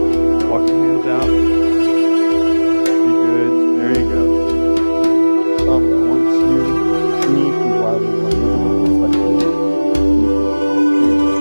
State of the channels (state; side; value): inverted; both; correlation -1.00